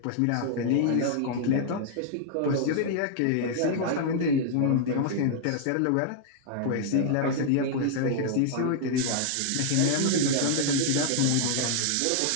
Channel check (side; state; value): both; different; correlation -0.01